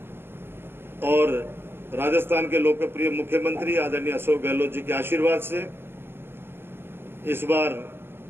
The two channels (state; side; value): late; left; 0.11 ms